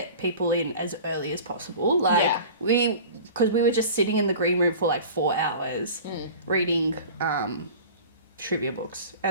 people in as early as possible. Like because we were just sitting in the green room for like 4 hours reading trivia books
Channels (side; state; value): both; inverted; correlation -0.39